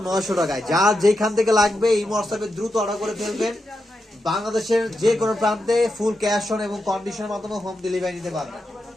900 টাকায়। যার যেখান থেকে লাগবে এই হোয়াটসঅ্যাপে দ্রুত অর্ডার করে ফেলবেন। বাংলাদেশের যে কোনো প্রান্তে ফুল ক্যাশ অন এবং কন্ডিশনের মাধ্যমে হোম ডেলিভারি নিতে পারবেন।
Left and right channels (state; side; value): normal; both; correlation 0.87